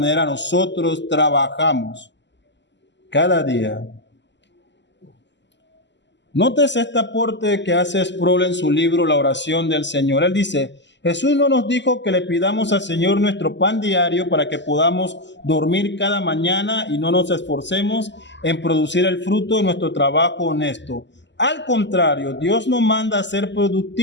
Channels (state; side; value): late; right; 0.52 ms